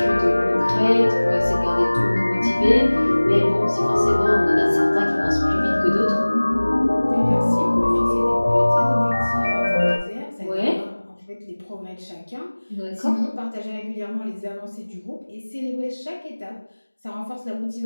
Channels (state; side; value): inverted; both; correlation -1.00